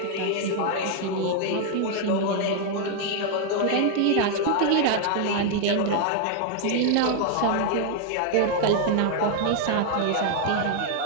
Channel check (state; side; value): different; both; correlation 0.00